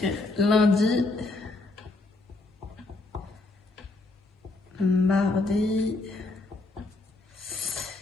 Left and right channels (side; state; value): right; quieter; 3.1 dB